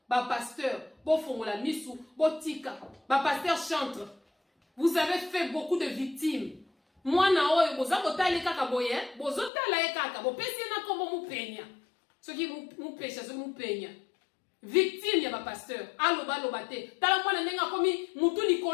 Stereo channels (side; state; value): right; drops out; at 9.5 s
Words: Ba pasteur, bo fongola misu, bo tika. Ba pasteur chantre. Vous avez fait beaucoup de victimes. Moi na oyo boza kotala kaka boye bozo tala kaka bo pesi na kombo mu penya soki mu pesha so mu penya victime ya ba pasteur aloba lobate tala mwana nenga komi mutu